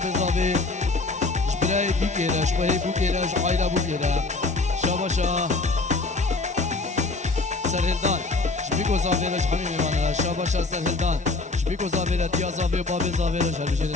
برای بوکیره شبهی بوکیره شعایره بوکیره شابا شا سرهلدان بگو زاویرش همی میوانره شابا شا سرهلدان بگو زاویره تیا زاوی و بابی زاویرش هر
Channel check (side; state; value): right; quieter; 3.5 dB